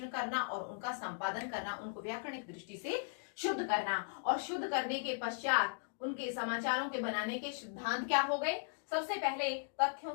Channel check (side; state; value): right; silent; digital silence